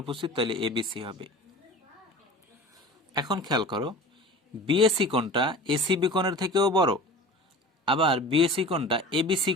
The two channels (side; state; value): both; normal; correlation 0.38